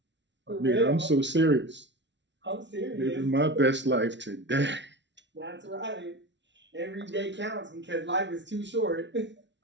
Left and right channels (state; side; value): late; left; 0.52 ms